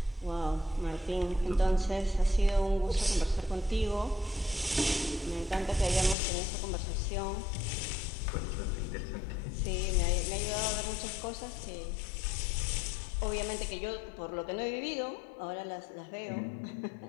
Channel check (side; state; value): right; drops out; at 6.2 s